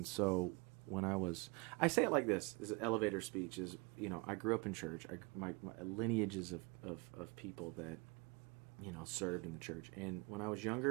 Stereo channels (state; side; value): quieter; left; 28.8 dB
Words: so when I say it like this: is an elevator speech. Is I grew up in church. My lineages of people that served in the church. And when I was